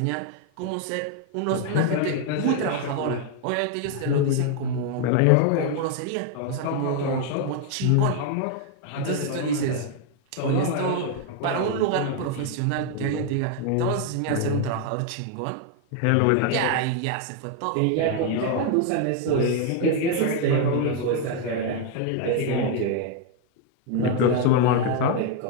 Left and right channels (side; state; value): both; different; correlation 0.00